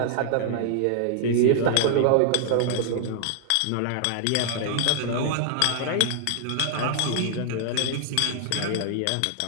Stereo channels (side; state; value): both; different; correlation 0.00